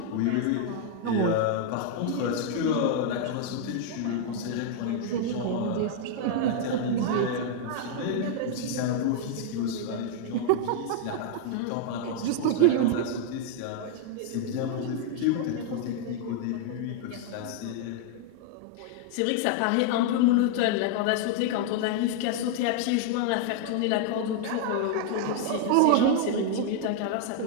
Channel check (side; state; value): both; different; correlation 0.00